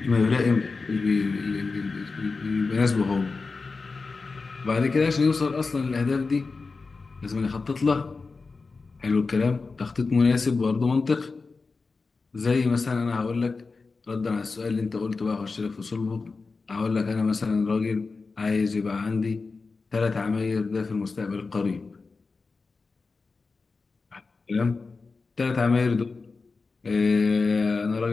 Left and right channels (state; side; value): quieter; right; 4.2 dB